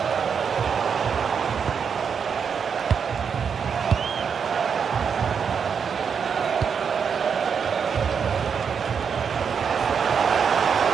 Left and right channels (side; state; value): left; quieter; 6.7 dB